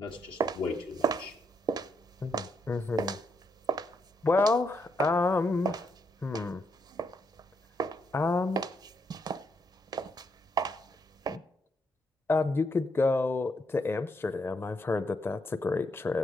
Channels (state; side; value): normal; both; correlation 0.77